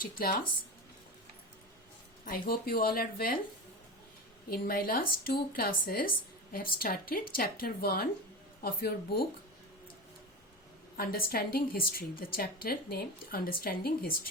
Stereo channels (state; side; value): normal; both; correlation 0.24